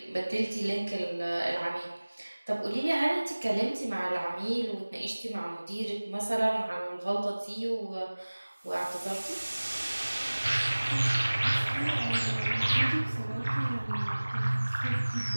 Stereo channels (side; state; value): both; inverted; correlation -1.00